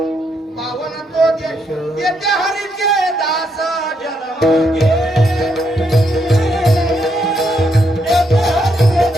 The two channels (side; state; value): both; normal; correlation 0.77